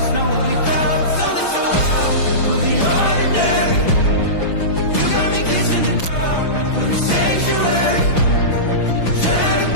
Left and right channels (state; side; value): late; right; 6.0 ms